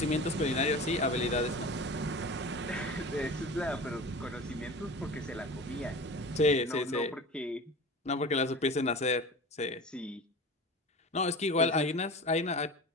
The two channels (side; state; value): both; normal; correlation 0.34